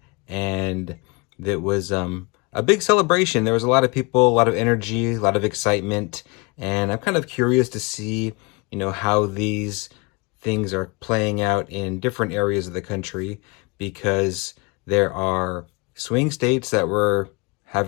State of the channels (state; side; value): quieter; right; 28.9 dB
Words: and it was a big celebration. There was a lot of people, a lot of energy, a lot of excitement, and I'm kind of curious to see, how these things are playing out in different areas of the country, because there are swing states that we're